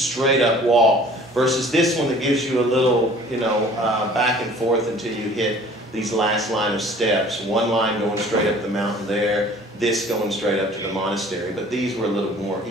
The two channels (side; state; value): both; normal; correlation 0.50